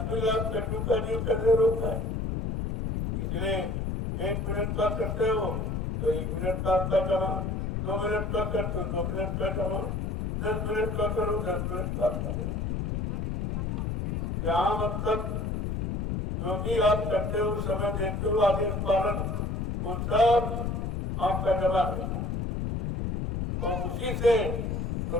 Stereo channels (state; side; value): noise; left; rumble, 2 dB below the sound